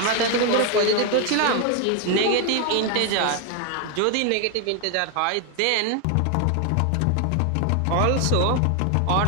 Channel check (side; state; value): both; different; correlation 0.01